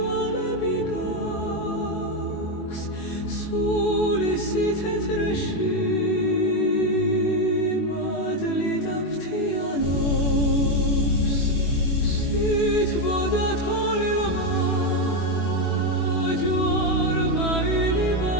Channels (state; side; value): late; right; 21 ms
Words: გაქვს სული სითეთრეში მადლი დაფრთიანობს სითბოდა თოლიმა ჯვარმა